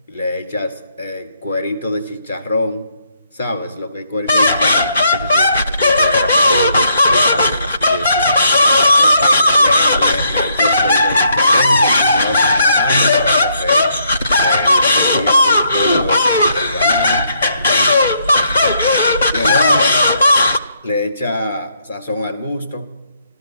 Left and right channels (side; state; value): both; inverted; correlation -0.73